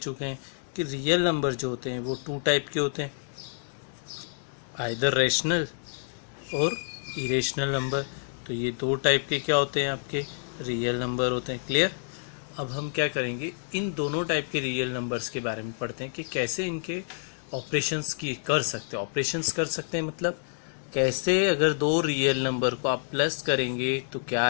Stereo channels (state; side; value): silent; right; 59 dB below the other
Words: हैं कि रियल नंबर जो होते हैं वो 2 टाइप के होते हैं, आइदर रेशनल और इरेशनल नंबर। तो ये 2 टाइप के क्या होते हैं, आपके रियल नंबर होते हैं। क्लियर। अब हम क्या करेंगे, इन दोनों टाइप के रियल नंबर्स के बारे में पढ़ते हैं कि कैसे इनके ऑपरेशंस की कर सकते हैं। ऑपरेशंस कर सकते हैं मतलब कैसे, अगर 2 रियल नंबर को आप प्लस करेंगे तो क्या